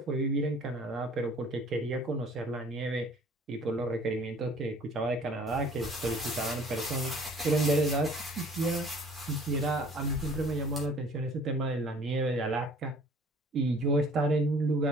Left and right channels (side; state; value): both; normal; correlation 0.52